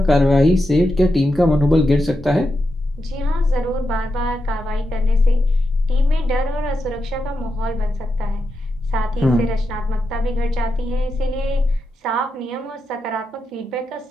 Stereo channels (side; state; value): both; normal; correlation 0.87